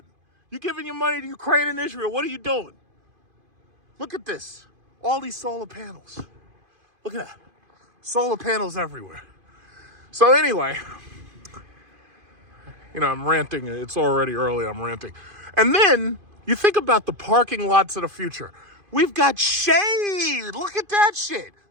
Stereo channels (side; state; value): left; late; 2.5 ms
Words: You're giving your money to Ukraine and Israel. What are you doing? Look at this. All these solar panels. Look at that. Solar panels everywhere. So anyway, you know, I'm ranting. It's already early. I'm ranting. And then you think about the parking lots of the future. We've got shade. Look at that shit.